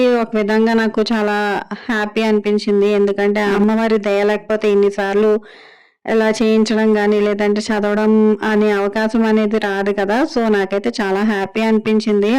ఒక విధంగా నాకు చాలా హ్యాపీ అనిపించింది. ఎందుకంటే అమ్మవారి దయ లేకపోతే ఇన్నిసార్లు ఇలా చేయించడం కానీ లేదంటే చదవడం అనే అవకాశం అనేది రాదు కదా. సో నాకైతే చాలా హ్యాపీ అనిపించింది.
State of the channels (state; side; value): identical; both; correlation 1.00